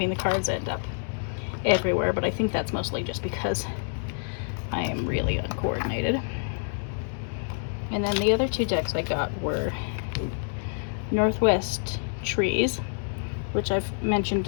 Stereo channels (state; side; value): silent; right; 60 dB below the other